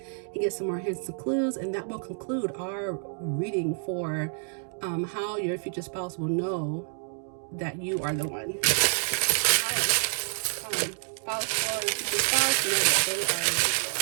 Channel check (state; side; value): silent; left; 59 dB below the other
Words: and get some more hints and clues, and that will conclude our reading for how your future spouse will know that you are the one. All right, spouse or future spouse know that they are the one.